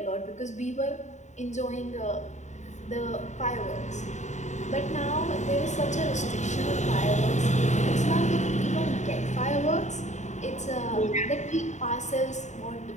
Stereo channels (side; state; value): right; late; 0.34 ms